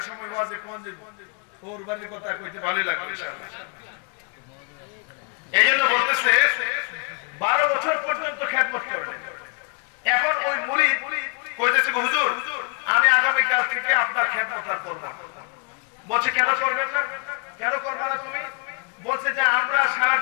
সময় ওয়াজে কোন যে ওর বাড়ির কথা কইতে ভালোই লাগবে ইনশাআল্লাহ। এইজন্য বলতেছে 12 বছর পর্যন্ত খেদমত করেন। এখন ওই মুরিদ কইতেছে, হুজুর আমি আগামী কাল থেকে আপনার খেদমত আর করব না। বলছে কেন করবেন না? কেন করবে না তুমি? বলছে যে আমরা সারা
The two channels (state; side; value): quieter; right; 34.0 dB